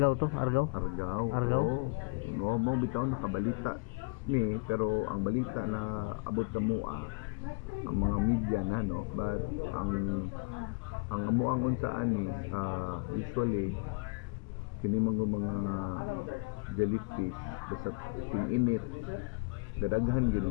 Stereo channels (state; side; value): quieter; right; 30.9 dB